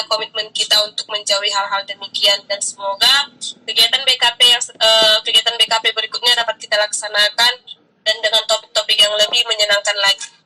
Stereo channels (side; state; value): both; identical; correlation 1.00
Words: komitmen kita untuk menjauhi hal-hal demikian, dan semoga kegiatan BKP berikutnya dapat kita laksanakan dan dengan topik-topik yang lebih menyenangkan lagi.